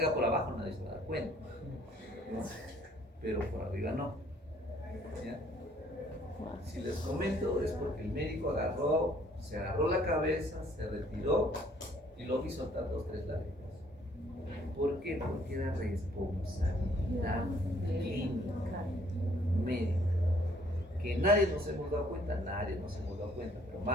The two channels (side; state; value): both; normal; correlation 0.62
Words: por abajo nadie se va a dar cuenta, ¿no? Pero por arriba no. ¿Ya? Si les comento es porque el médico se agarró la cabeza, se retiró y lo vi soltar 2 o 3 lágrimas. ¿Por qué? Porque era responsabilidad clínica, médica. Que nadie nos hemos dado cuenta, pero